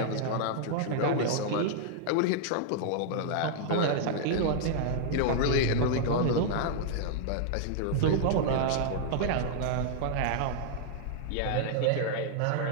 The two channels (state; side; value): different; both; correlation -0.01